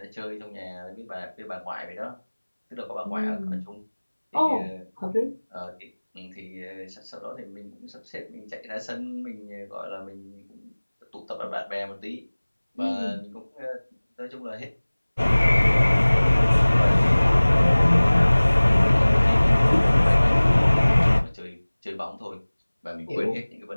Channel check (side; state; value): both; inverted; correlation -1.00